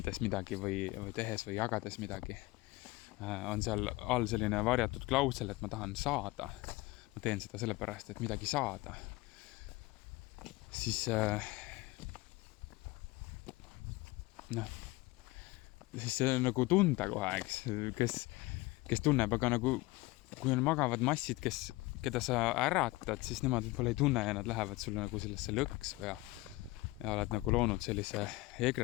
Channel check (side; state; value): right; quieter; 21.1 dB